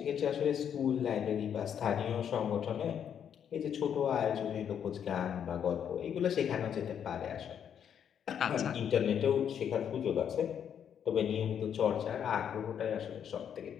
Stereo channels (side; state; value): right; quieter; 8.5 dB